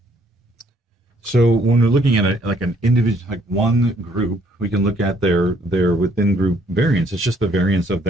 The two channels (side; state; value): both; normal; correlation 0.66